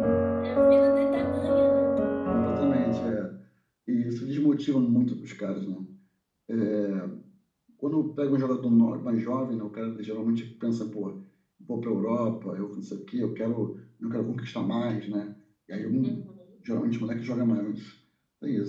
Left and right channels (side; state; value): both; identical; correlation 1.00